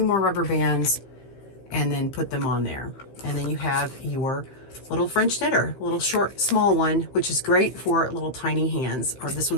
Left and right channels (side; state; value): right; late; 15 ms